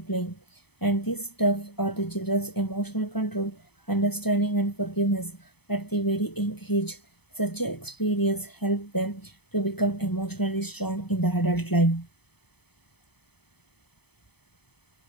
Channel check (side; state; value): right; late; 0.98 ms